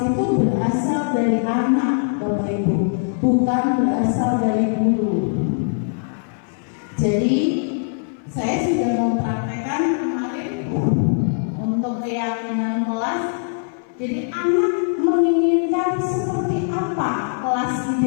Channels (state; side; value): silent; right; 59 dB below the other